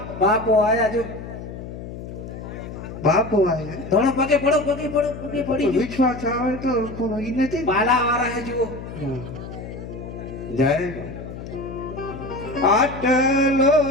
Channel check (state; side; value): noise; left; hum, 10 dB below the sound